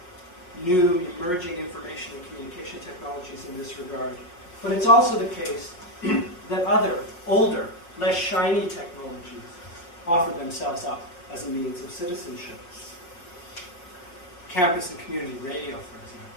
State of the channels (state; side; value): late; right; 5.6 ms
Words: new emerging information and communication technologies in this regard, but it's also the case that other, older, less shiny technologies offer themselves up as a means of citizenship. Campus and community radio, for